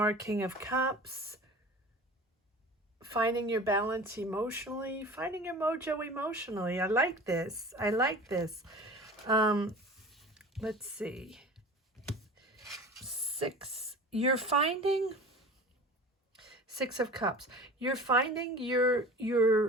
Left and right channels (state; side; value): normal; both; correlation 0.39